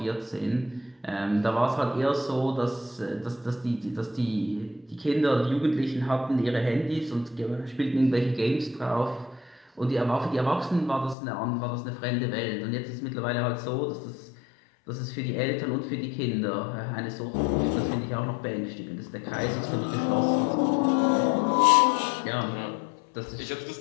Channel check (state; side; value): drops out; right; at 11.2 s